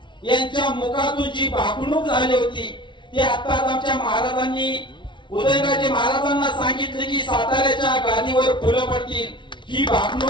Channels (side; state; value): right; late; 0.24 ms